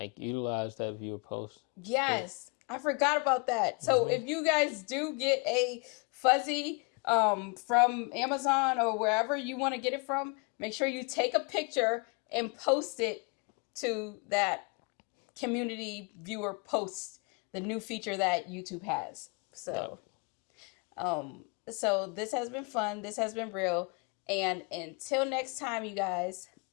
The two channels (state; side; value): quieter; right; 33.1 dB